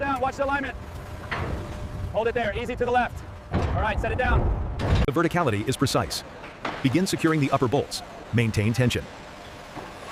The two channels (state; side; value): identical; both; correlation 1.00